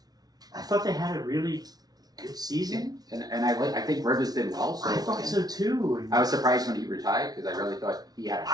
thought they had a really good season. And I think Rivers did well. So I thought so too. I was surprised when he retired because I really thought he had a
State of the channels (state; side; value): late; left; 0.19 ms